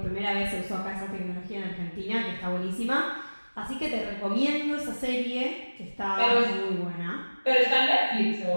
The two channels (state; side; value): inverted; both; correlation -1.00